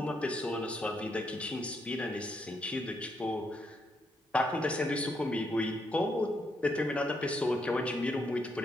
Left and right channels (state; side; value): normal; both; correlation 0.77